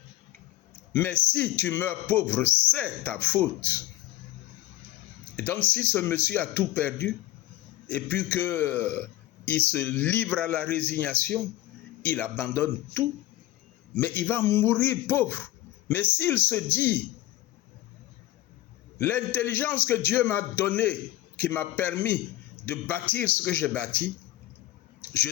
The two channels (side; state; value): right; quieter; 15.5 dB